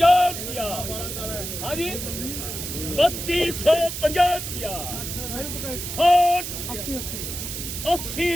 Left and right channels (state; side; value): noise; right; hiss, 6 dB below the sound